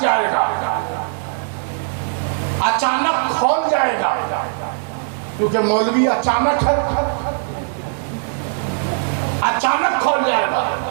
जाएगा, अचानक खोल जाएगा, क्योंकि मौलवी अचानक है, अचानक खोल जाएगा,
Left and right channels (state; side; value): silent; left; digital silence